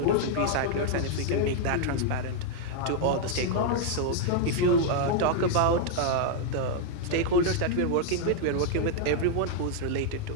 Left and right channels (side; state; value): both; different; correlation 0.00